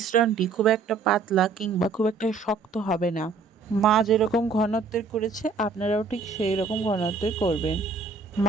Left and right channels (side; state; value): left; quieter; 4.6 dB